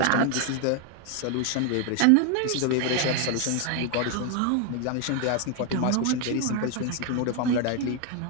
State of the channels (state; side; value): different; both; correlation 0.01